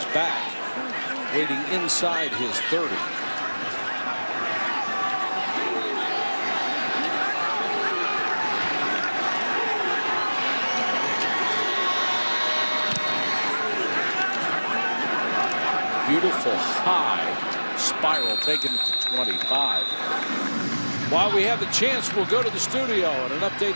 back, waiting inside his 30. Beautiful high spiral, taking it to 25. While we have the chance, we'll go to the studio and an update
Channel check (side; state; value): both; inverted; correlation -1.00